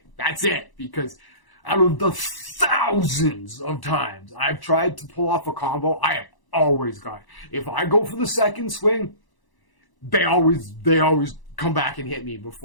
That's it. Because out of the thousands of times I've tried to pull off a combo, I have always got it. If I go for the second swing, they always come back and hit me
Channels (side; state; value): right; late; 1.0 ms